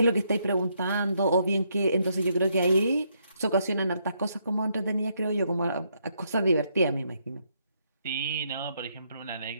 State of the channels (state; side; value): inverted; both; correlation -0.75